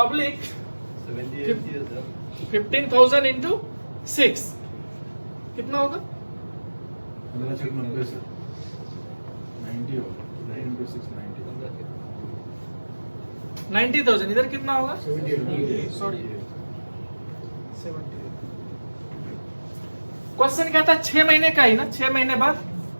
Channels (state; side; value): inverted; both; correlation -1.00